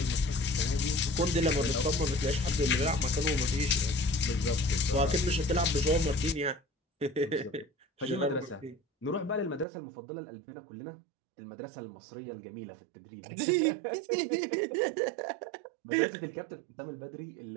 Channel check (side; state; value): left; drops out; at 9.7 s